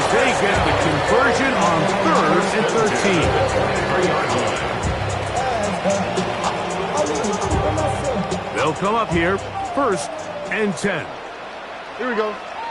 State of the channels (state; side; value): identical; both; correlation 1.00